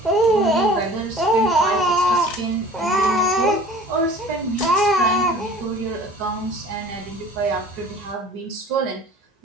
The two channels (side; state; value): both; normal; correlation 0.45